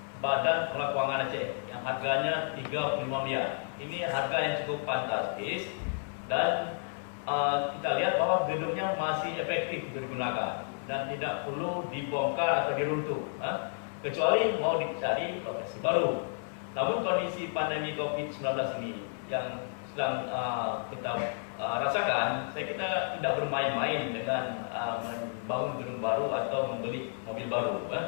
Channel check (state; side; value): silent; right; 57 dB below the other